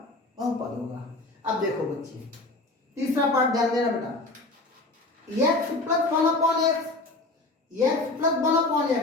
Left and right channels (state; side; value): quieter; right; 3.0 dB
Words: बहुपद होगा। अब देखो बच्चे, तीसरा पार्ट ध्यान देना बेटा। x plus 1/x, x plus